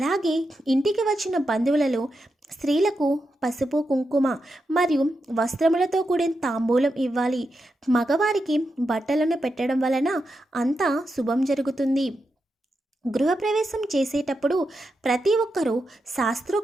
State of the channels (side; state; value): both; normal; correlation 0.87